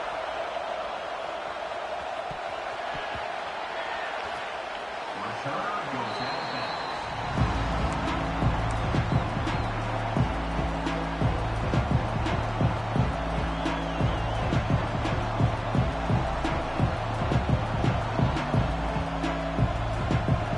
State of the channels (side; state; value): both; identical; correlation 1.00